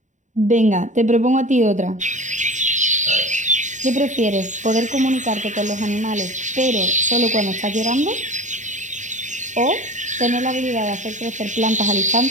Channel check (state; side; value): late; left; 0.36 ms